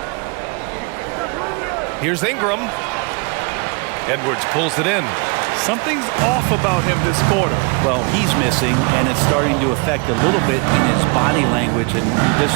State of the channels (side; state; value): left; quieter; 31.0 dB